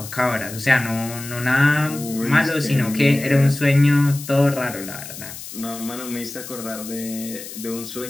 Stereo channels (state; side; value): noise; left; hiss, 12 dB below the sound